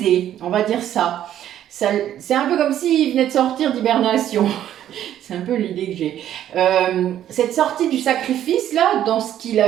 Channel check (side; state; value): left; quieter; 11.3 dB